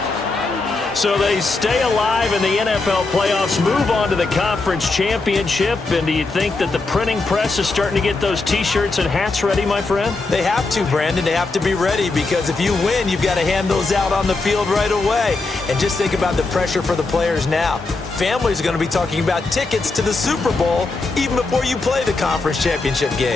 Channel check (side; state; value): right; quieter; 3.6 dB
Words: So they stay alive in the NFL playoffs, move on to the conference championship. And do you think that the printing press is starting to get those T-shirts and hats ready, my friend? They have to, Brandon. They have to be ready, because if you win, you've got to hand those out on the field right away. And just think about the pressure for the players now. Families are going to be talking about tickets to the Super Bowl even before you play the conference championship